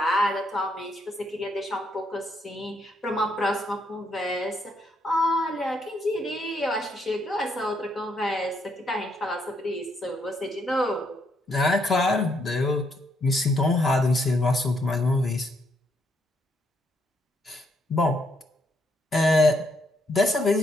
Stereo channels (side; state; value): both; normal; correlation 0.75